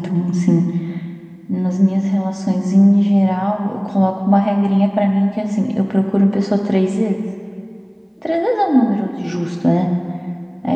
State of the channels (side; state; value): both; identical; correlation 1.00